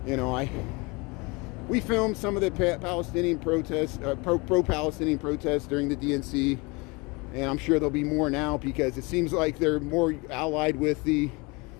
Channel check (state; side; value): quieter; right; 27.1 dB